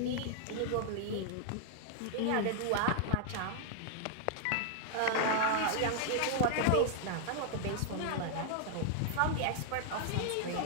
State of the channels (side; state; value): both; different; correlation 0.00